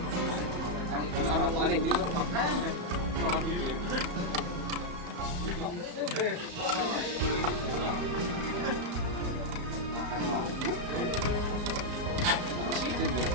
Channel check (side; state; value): left; late; 34 ms